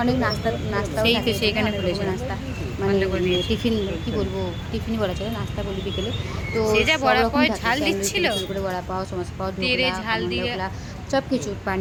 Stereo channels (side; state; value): both; identical; correlation 1.00